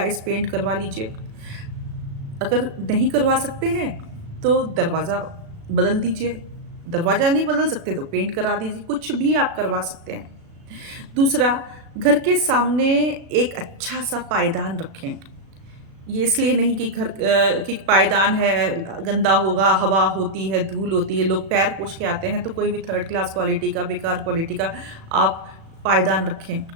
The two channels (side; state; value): left; late; 36 ms